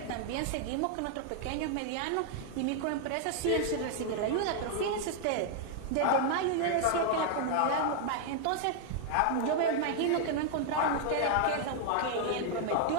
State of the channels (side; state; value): both; different; correlation 0.00